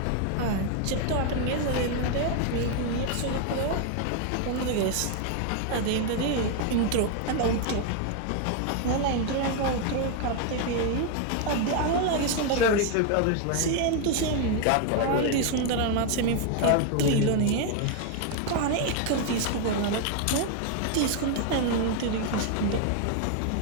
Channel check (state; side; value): different; both; correlation 0.01